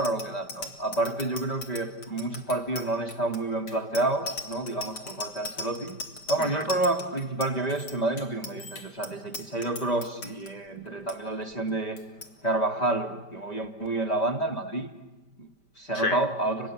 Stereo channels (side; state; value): right; late; 5.1 ms